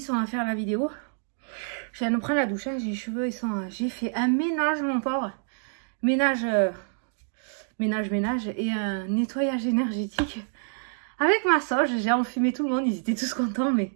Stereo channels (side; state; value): left; silent; 60 dB below the other